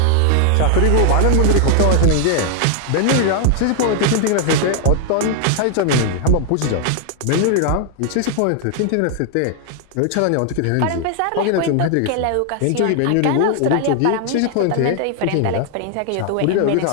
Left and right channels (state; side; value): different; both; correlation 0.00